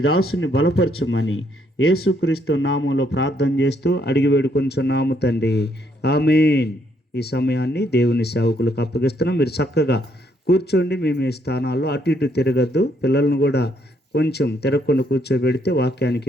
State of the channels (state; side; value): normal; both; correlation 0.71